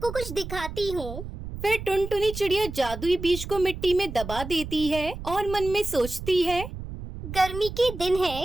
कुछ दिखाती हूँ। फिर टुनटुनी चिड़िया जादुई बीज को मिट्टी में दबा देती है और मन में सोचती है, गर्मी के दिन है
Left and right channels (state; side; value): noise; right; rumble, 9 dB below the sound